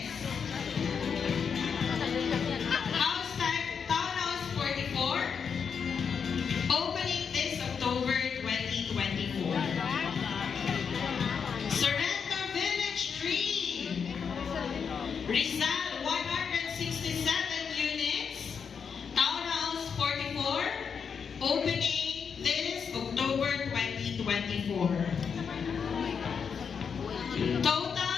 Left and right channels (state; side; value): quieter; right; 6.5 dB